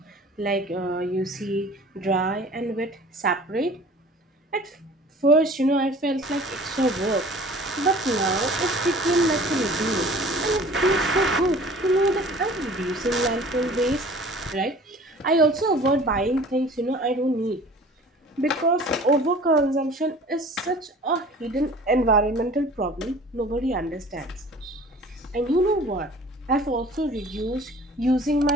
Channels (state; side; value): normal; both; correlation 0.46